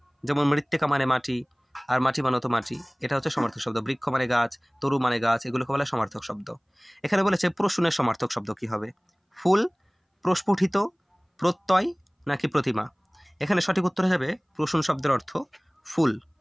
যেমন মৃত্তিকা মানে মাটি, আর মাটি মানে তো মাটি, এটা হচ্ছে সমার্থক শব্দ। বৃক্ষ মানে গাছ, তরু মানে গাছ, এগুলোকে বলে সমার্থক শব্দ। এখানে বলেছে প্রশ্নের সমার্থক শব্দ কি হবে? ফুল, প্রস্ফুটিত, প্রত্যয় নাকি প্রতিমা? এখানে সঠিক উত্তর যাবে প্রশ্ন শব্দের অর্থ ফুল।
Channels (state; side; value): identical; both; correlation 1.00